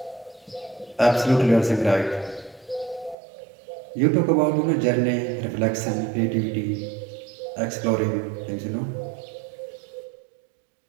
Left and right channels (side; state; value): left; drops out; at 3.2 s